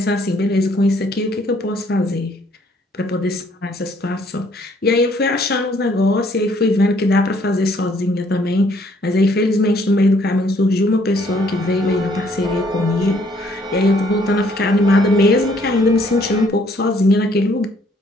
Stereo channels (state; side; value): normal; both; correlation 0.64